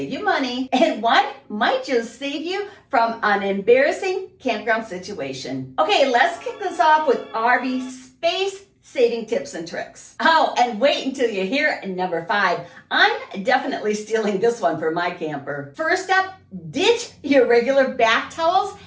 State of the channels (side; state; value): both; identical; correlation 1.00